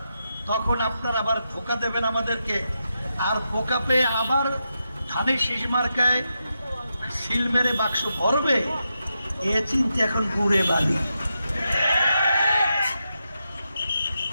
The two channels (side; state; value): both; inverted; correlation -0.86